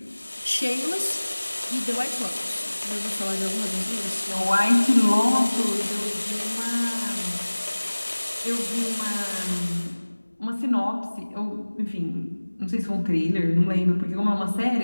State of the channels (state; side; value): inverted; both; correlation -1.00